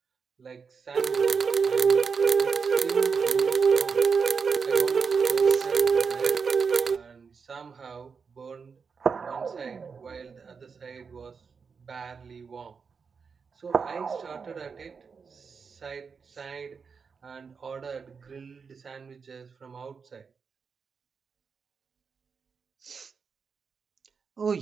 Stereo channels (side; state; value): left; quieter; 5.6 dB